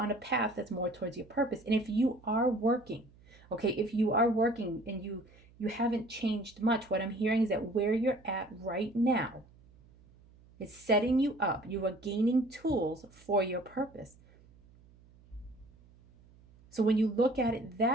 a path that's more towards your purpose. And if you are working, okay, if you are working and you haven't changed much, what I'm hearing is that where you're at right now, It's setting you up. You are gaining tools for your purpose. So when you look at it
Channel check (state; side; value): noise; right; hum, 26 dB below the sound